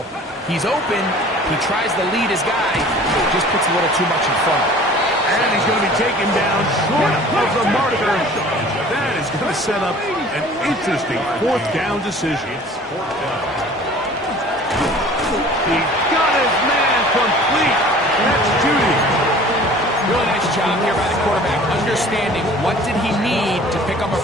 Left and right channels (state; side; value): normal; both; correlation 0.47